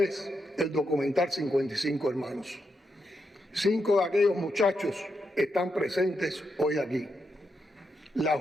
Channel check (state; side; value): normal; both; correlation 0.83